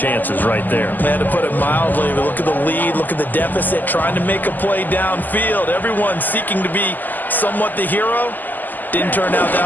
right there. Man, to put it mildly, look at the lead, look at the deficit, trying to make a play downfield. Everyone seeking to be somewhat the hero. Didn't turn out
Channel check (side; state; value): right; late; 0.086 ms